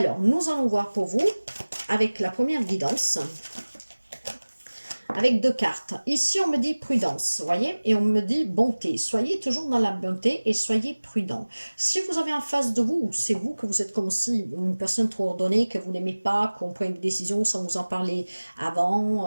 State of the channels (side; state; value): both; inverted; correlation -1.00